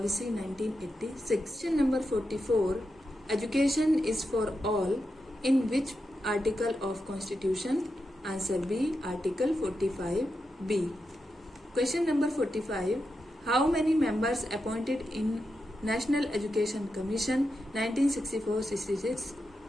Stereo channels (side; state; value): both; normal; correlation 0.87